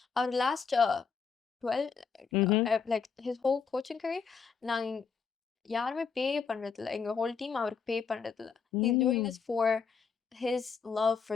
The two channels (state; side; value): quieter; right; 5.9 dB